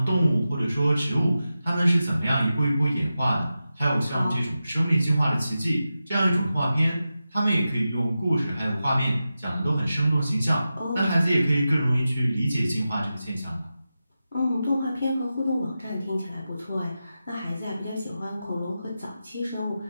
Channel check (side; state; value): both; inverted; correlation -0.92